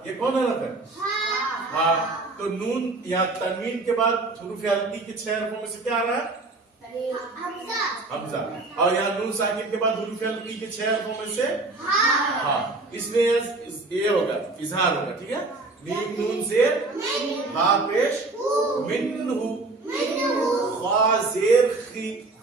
ये कौन हरफ है? हा। तो नून यहाँ तनवीन के बाद हुरूफ हल्की के 6 हरफों में से क्या आ रहा है? हमजा। और यहाँ नून साकिन के बाद हुरूफ हल्की के 6 हरफों में से हा। इसमें ये होगा इजहार होगा। ठीक है। मीम नून जेर हा पेश मिन्हु, खा जेर खी,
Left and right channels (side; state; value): left; quieter; 3.3 dB